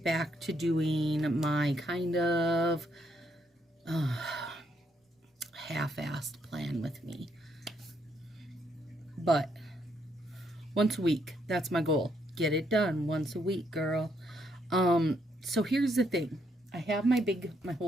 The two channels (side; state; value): both; normal; correlation 0.74